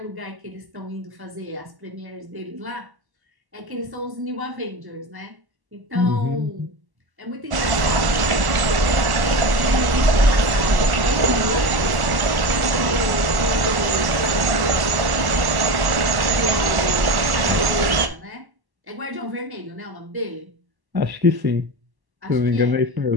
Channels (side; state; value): left; late; 1.1 ms